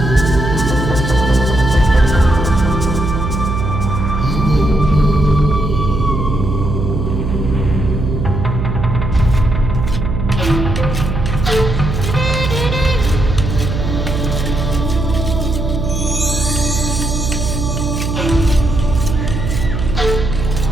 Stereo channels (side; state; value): right; noise; hum, 2 dB below the sound